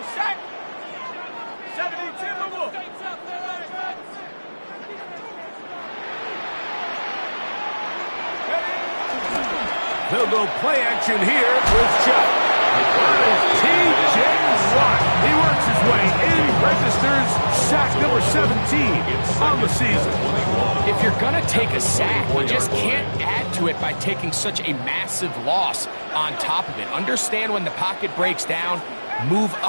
sack. 72 move. They'll go play action here with Chuck. T.J. Watt. He works his way in, registers sack number 17 on the season. If you're going to take a sack, you just can't add to it by taking such a massive loss on top of it. Understand when the pocket breaks down, move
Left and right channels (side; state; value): both; inverted; correlation -1.00